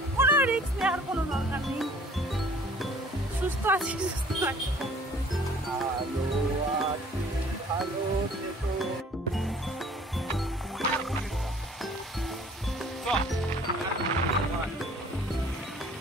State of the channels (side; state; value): both; normal; correlation 0.53